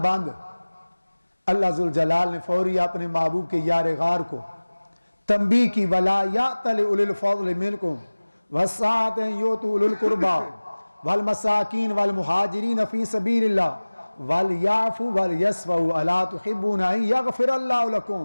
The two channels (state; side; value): inverted; both; correlation -1.00